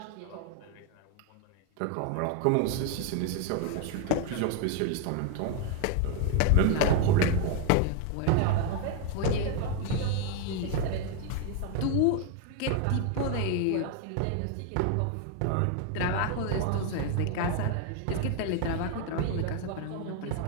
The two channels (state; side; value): different; both; correlation 0.01